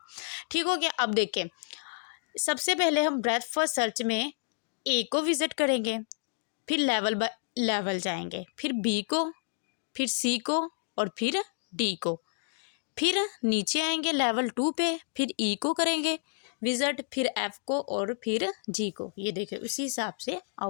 ठीक हो गया। अब देखें, सबसे पहले हम ब्रेथ फर्स्ट सर्च में ए को विजिट करेंगे, फिर लेवल बाय लेवल जाएंगे, फिर बी को, फिर सी को और फिर डी को, फिर नीचे आएंगे लेवल 2 पे, फिर ई को करेंगे विजिट, फिर एफ को और फिर जी को। ये देखिए उसी हिसाब से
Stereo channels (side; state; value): right; silent; digital silence